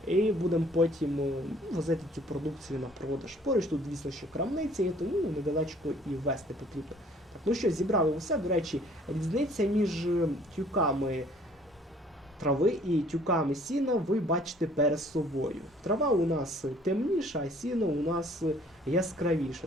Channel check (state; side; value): normal; both; correlation 0.57